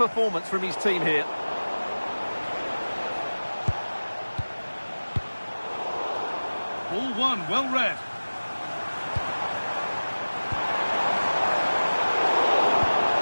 from his team here. Ball one, well read.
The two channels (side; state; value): both; inverted; correlation -1.00